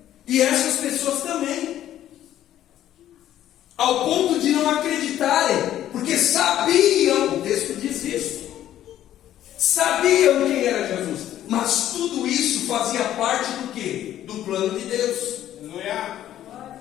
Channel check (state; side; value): quieter; right; 12.1 dB